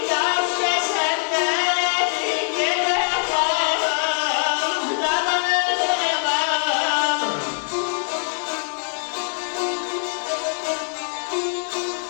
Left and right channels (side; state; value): right; silent; 64 dB below the other